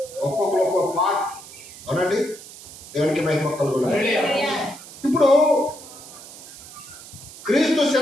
ఒక్కొక్కరు ఒక్కొక్క పార్ట్. అవునండి, దేవునికి మహిమ కలుగును. ఇప్పుడు క్రీస్తు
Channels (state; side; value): noise; right; hiss, 16 dB below the sound